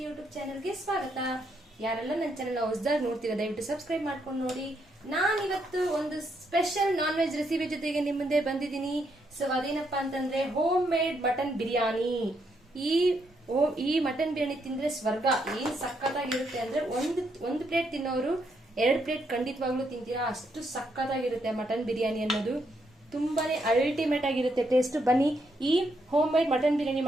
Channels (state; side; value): normal; both; correlation 0.77